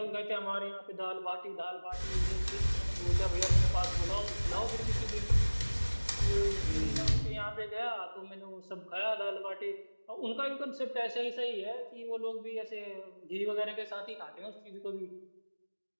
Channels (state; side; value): inverted; both; correlation -1.00